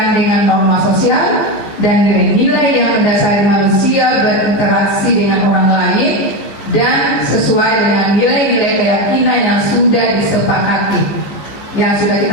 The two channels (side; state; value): right; late; 15 ms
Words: dengan norma sosial dan nilai-nilai yang mendasari manusia berinteraksi dengan orang lain dan sesuai dengan nilai-nilai keyakinan yang sudah disepakati, yang sudah